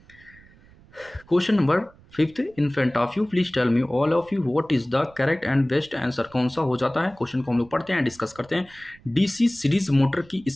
question number 5 in front of you, please tell me all of you what is the correct and best answer. कौन सा हो जाता है? क्वेश्चन को हम लोग पढ़ते हैं, डिस्कस करते हैं। डीसी सीरीज मोटर की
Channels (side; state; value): right; noise; rumble, 26 dB below the sound